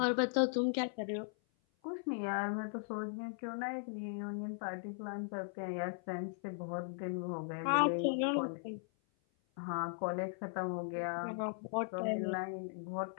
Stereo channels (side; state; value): right; silent; 52 dB below the other